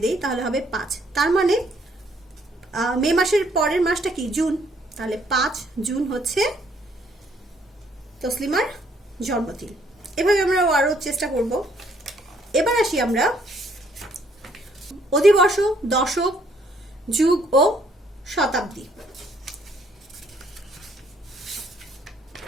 দেই তাহলে হবে 5। তার মানে মে মাসের পরের মাসটা কি? জুন। তাহলে 5 জুন হচ্ছে তসলিমার জন্মদিন। এভাবে আমরা আরো চেষ্টা করব। এবার আসি আমরা অধিবর্ষ, দশক, যুগ ও শতাব্দী।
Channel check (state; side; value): normal; both; correlation 0.66